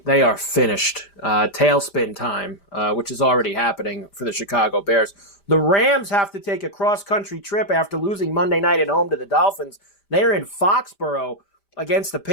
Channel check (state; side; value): late; right; 5.0 ms